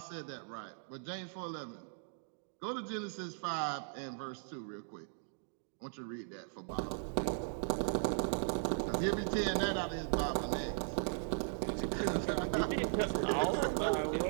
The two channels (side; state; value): left; silent; digital silence